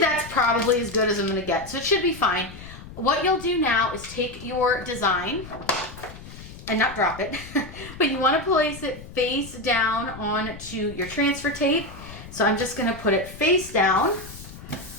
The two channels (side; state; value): left; noise; rumble, 15 dB below the sound